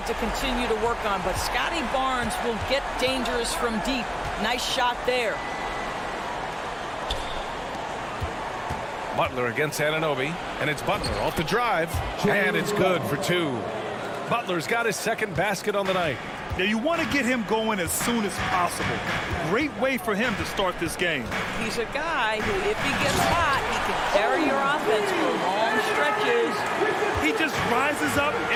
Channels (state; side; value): identical; both; correlation 1.00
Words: to continue to work on, but Scotty Barnes will get dangerous from deep. Nice shot there. Butler against Anunoby, and it's Butler off the drive, and it's good for 2. Butler's got his second basket on the night. Now, you want to get him going as soon as possible. Great way for him to start this game. He's a guy who, if he gets hot, he can carry your offense for long stretches. He just rises up